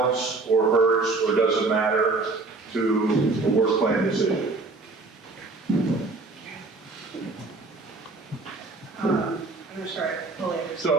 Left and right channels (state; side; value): quieter; left; 3.6 dB